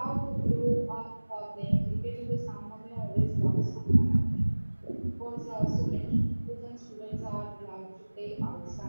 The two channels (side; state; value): both; inverted; correlation -1.00